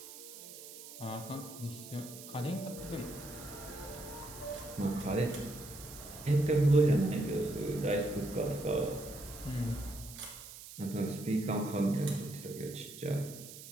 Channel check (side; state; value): right; noise; hiss, 14 dB below the sound